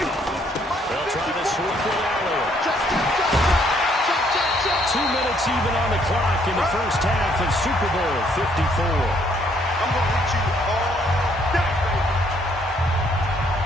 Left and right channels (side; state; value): both; normal; correlation 0.67